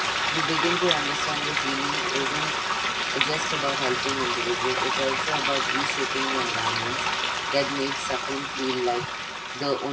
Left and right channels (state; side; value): identical; both; correlation 1.00